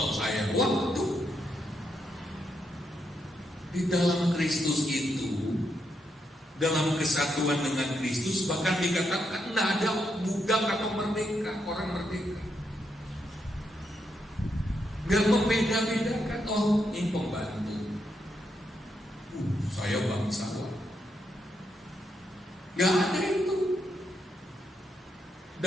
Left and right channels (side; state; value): both; normal; correlation 0.81